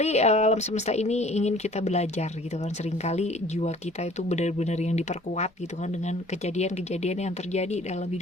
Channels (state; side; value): normal; both; correlation 0.52